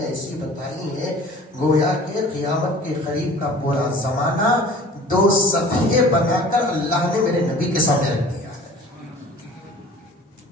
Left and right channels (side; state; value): both; normal; correlation 0.46